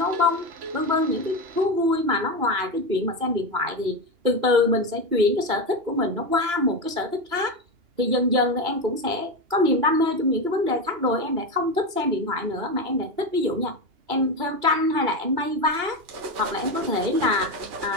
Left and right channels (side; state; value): left; late; 2.9 ms